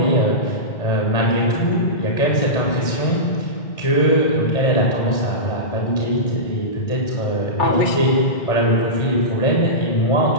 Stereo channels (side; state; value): right; late; 1.6 ms